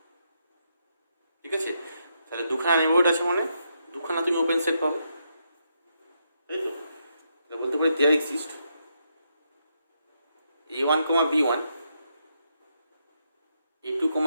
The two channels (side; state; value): both; inverted; correlation -0.80